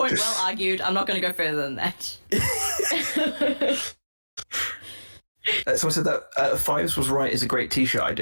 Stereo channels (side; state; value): both; inverted; correlation -1.00